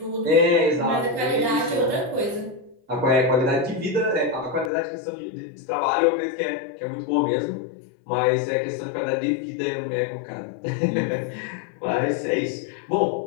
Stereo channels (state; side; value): drops out; right; at 4.7 s